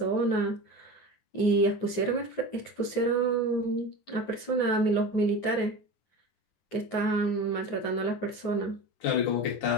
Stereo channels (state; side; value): late; right; 9.4 ms